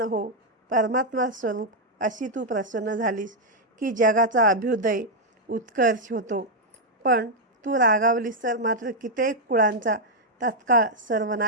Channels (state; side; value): normal; both; correlation -0.02